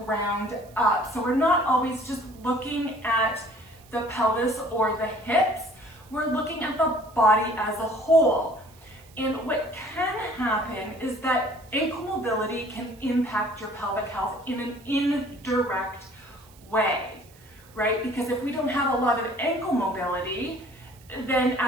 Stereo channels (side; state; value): right; noise; hiss, 26 dB below the sound